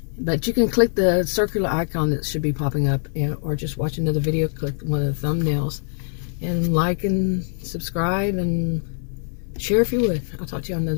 But you can click the circular icon that should be popping up, or just watch another video, click one of the thumbnails, and like and subscribe and share if you would. I'll talk to you on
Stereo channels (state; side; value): silent; right; digital silence